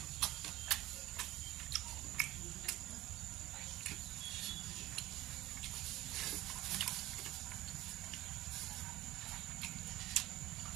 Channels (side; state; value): left; quieter; 16.5 dB